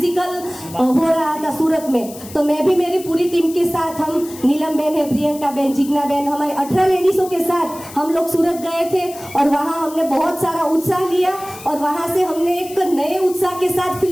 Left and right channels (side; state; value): left; noise; hiss, 16 dB below the sound